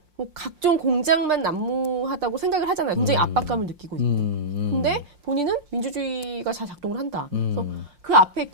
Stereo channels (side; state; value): left; late; 5.6 ms